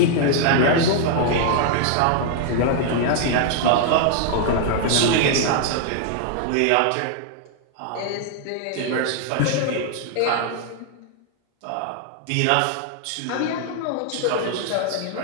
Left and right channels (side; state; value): both; different; correlation 0.00